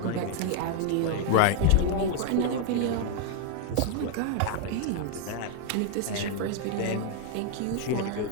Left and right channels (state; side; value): different; both; correlation 0.00